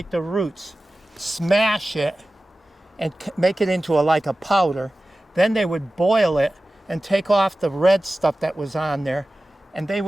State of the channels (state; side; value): normal; both; correlation 0.95